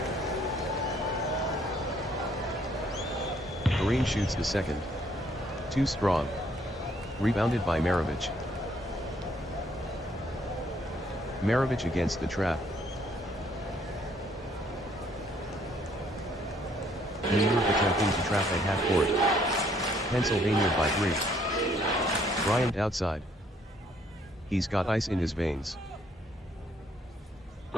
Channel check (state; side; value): normal; both; correlation 0.66